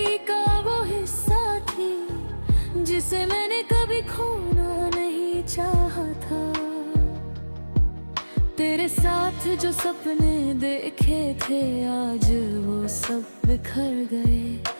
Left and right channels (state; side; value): inverted; both; correlation -1.00